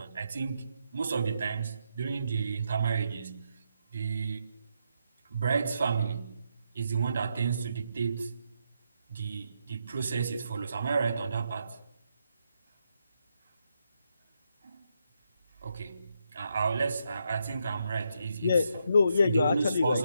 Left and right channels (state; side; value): inverted; both; correlation -0.80